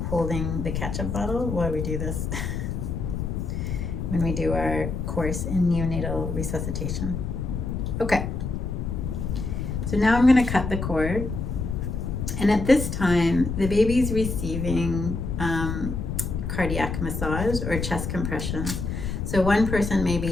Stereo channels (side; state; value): left; noise; rumble, 3 dB below the sound